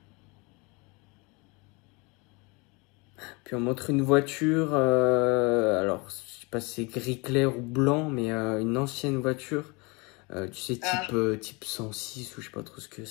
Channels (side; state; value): right; quieter; 28.1 dB